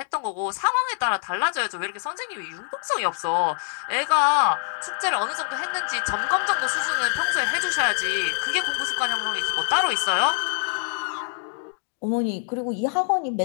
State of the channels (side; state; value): right; silent; 62 dB below the other